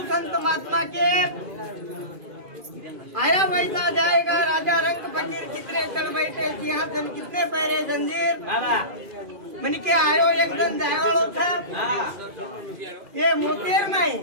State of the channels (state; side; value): late; left; 2.4 ms